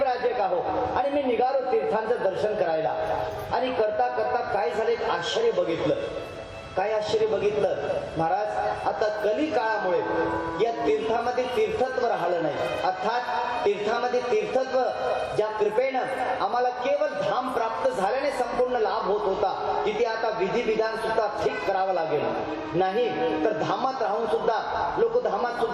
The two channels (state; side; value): identical; both; correlation 1.00